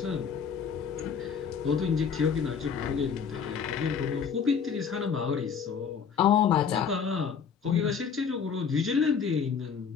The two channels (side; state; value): right; quieter; 6.7 dB